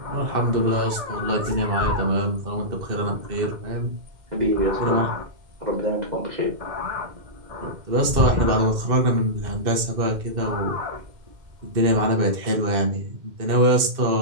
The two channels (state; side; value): late; left; 2.1 ms